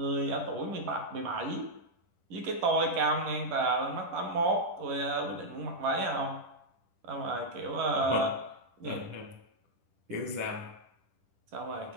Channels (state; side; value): late; left; 10 ms